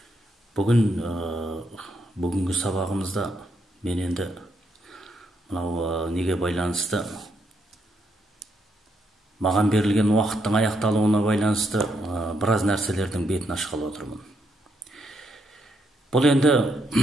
Бүгінгі сабағымызда мен енді мынау неге байланысты, маған берілген уақыттың аяқталуына байланысты біраз нәрселердің бетін ашқалы отырмын. Бұл енді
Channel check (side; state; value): both; normal; correlation 0.77